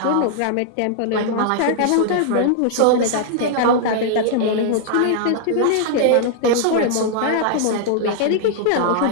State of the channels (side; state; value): both; different; correlation -0.01